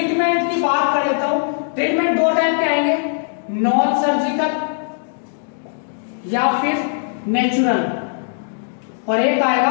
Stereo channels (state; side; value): silent; right; digital silence